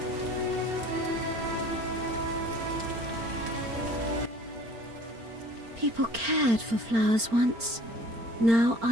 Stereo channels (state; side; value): late; left; 4.4 ms